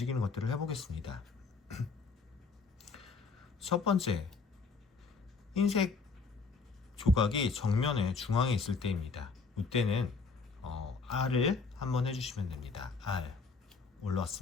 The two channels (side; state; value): right; quieter; 4.6 dB